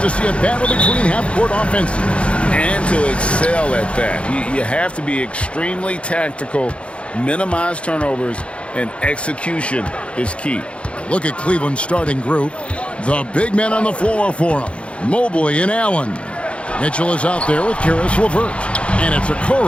see a battle between half-court offenses? And to excel at that. You have to be extremely tactical, minimize turnovers, and execution is key. Look at Cleveland's starting group. The big men on the floor for them. Mobley and Allen. Mitchell is out there with Karis LeVert. And it's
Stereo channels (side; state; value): right; late; 0.060 ms